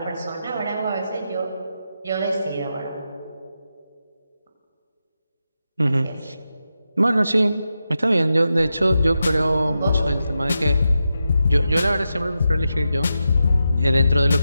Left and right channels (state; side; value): inverted; both; correlation -0.89